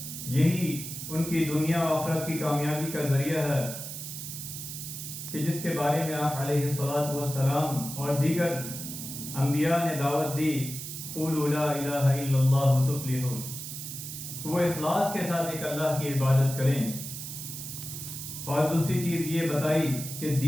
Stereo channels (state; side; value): noise; right; hiss, 8 dB below the sound